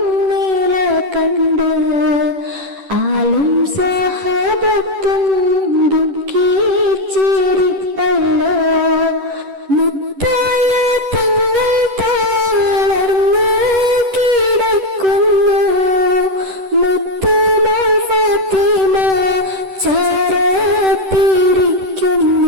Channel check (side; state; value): left; late; 10 ms